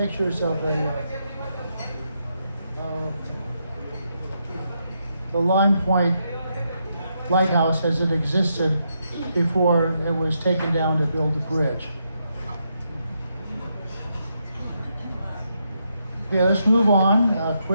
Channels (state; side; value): inverted; both; correlation -0.80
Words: of the Lime Point lighthouse as it existed before it was taken down to build the bridge. Okay, let's move on